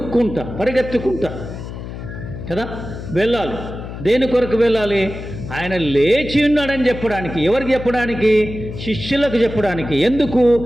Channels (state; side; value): noise; left; hum, 10 dB below the sound